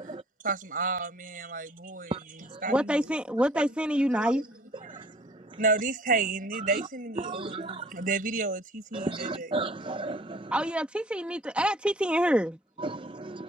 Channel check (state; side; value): normal; both; correlation 0.52